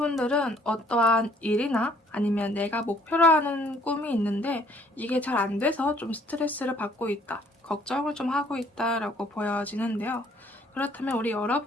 어떠한 일이나 아니면 내가 목표로 하는 꿈이 있는데 이게 잘 안 돼서 좀 스트레스를 받고 있다, 걱정을 좀 하고 있다라고 보여지는데요. 그렇다면 우리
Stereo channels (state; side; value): normal; both; correlation 0.61